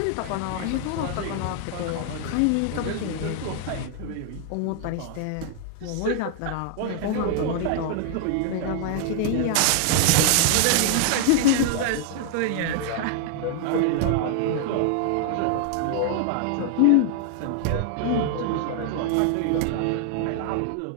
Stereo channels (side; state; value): both; different; correlation 0.00